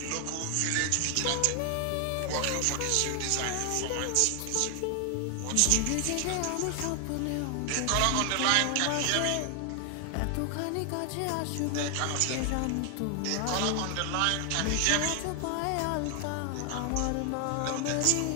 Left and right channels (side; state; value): both; different; correlation 0.00